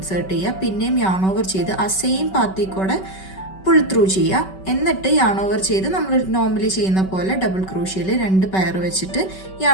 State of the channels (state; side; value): late; right; 5.3 ms